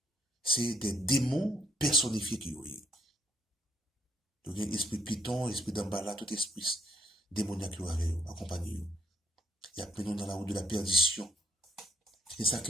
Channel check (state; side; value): normal; both; correlation 0.71